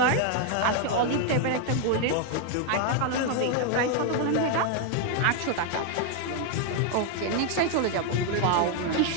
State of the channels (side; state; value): both; different; correlation 0.01